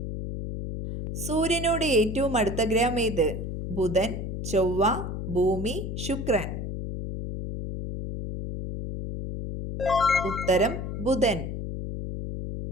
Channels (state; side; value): noise; left; hum, 5 dB below the sound